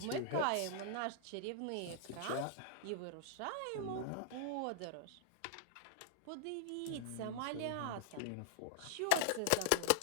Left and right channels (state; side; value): different; both; correlation -0.01